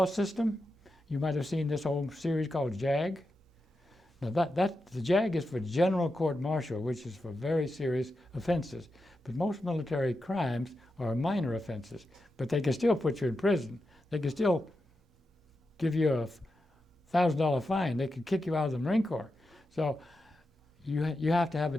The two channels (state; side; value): normal; both; correlation 0.88